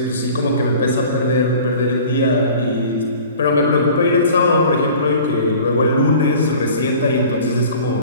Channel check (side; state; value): both; inverted; correlation -0.45